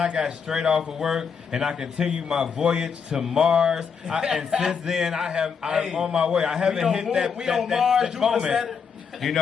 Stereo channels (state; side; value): quieter; right; 6.2 dB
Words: got straight off of work and I continue my voyage to Mars. And since then, I'm on my way. I haven't hit that moment. You